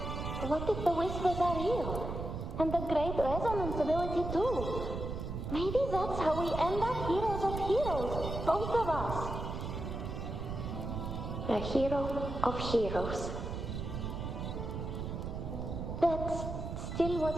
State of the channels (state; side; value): noise; right; rumble, 5 dB below the sound